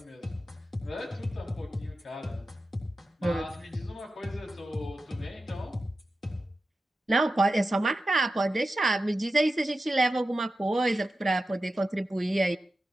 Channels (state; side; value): normal; both; correlation 0.92